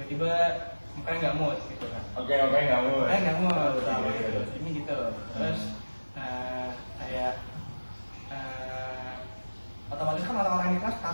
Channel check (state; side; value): inverted; both; correlation -1.00